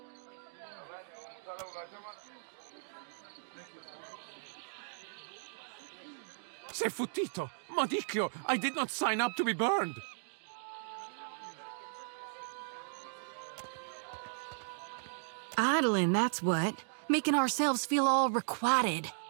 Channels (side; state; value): left; silent; digital silence